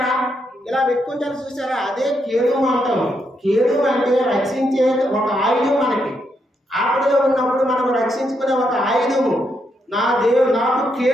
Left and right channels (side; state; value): both; normal; correlation 0.79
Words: ఇలా పెట్టుకుంటారు చూసారా, అదే కేడము అంటాం. కేడము అంటే రక్షించే ఒక ఆయుధం. మనకి ఆపదలో ఉన్నప్పుడు మనం రక్షించుకునే ఒక ఆయుధము. నా దేవుడు నాకు